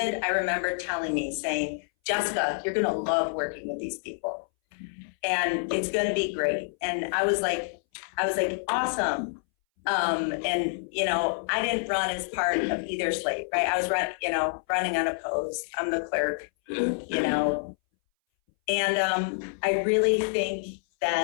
I remember telling me, saying, Jessica, you're gonna love working with these people. And it's gonna be great. And I was like, awesome. I didn't run as part of either slate, right? I was running unopposed. I'm the clerk, And I really think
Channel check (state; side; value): silent; right; 60 dB below the other